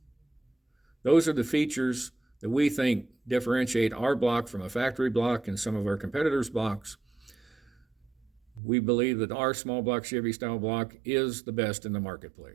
Those are the features that we think differentiate our block from a factory block and some of our competitors' blocks. We believe that our small block Chevy style block is the best in the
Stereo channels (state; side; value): drops out; left; at 8.6 s